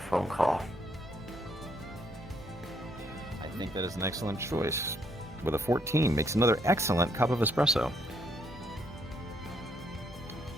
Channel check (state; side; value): normal; both; correlation 0.71